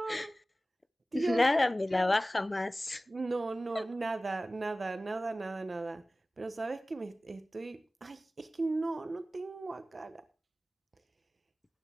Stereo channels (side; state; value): both; normal; correlation 0.96